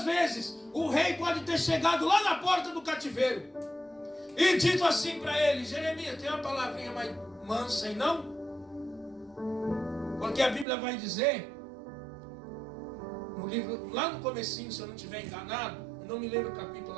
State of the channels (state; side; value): drops out; left; at 10.7 s